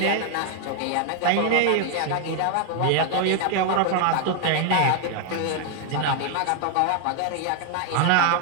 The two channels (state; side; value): different; both; correlation 0.00